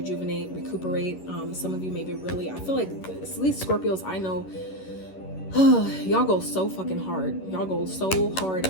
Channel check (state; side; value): late; right; 11 ms